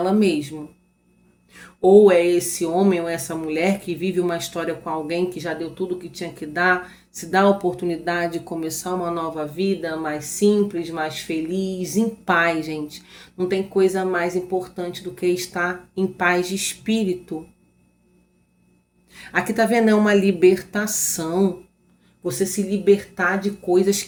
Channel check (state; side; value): identical; both; correlation 1.00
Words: mesma. Ou é esse homem ou essa mulher que vive uma história com alguém que já deu tudo o que tinha que dar, se dá a oportunidade de começar uma nova vida mais simples, mais feliz, em paz, gente. Não tem coisa mais importante do que estar em paz de espírito. Aqui tá vendo, é uma libertação. Você se libertar de coisas